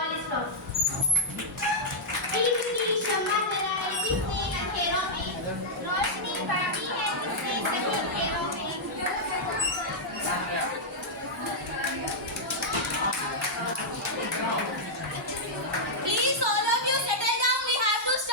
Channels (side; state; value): both; normal; correlation -0.06